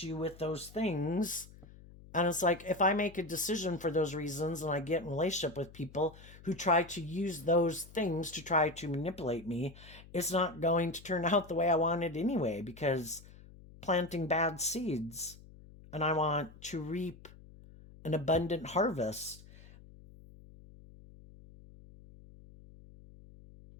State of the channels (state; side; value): noise; left; hum, 20 dB below the sound